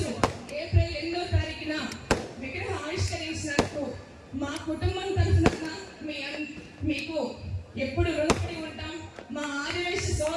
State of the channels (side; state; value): both; identical; correlation 1.00